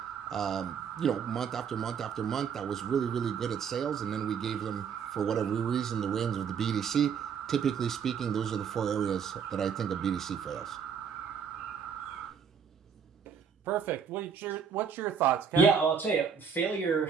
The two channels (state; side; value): quieter; left; 6.9 dB